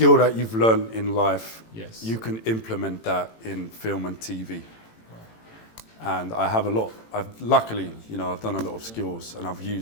that you've learned in life, you can implement that in film and TV. Right. And I have a lot. Luckily, you know, I've done a lot of skills and I've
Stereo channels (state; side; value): late; right; 18 ms